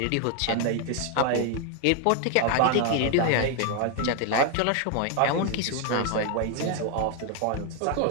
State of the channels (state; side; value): different; both; correlation 0.01